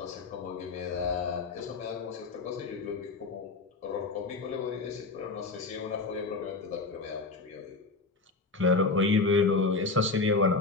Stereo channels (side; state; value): right; quieter; 3.8 dB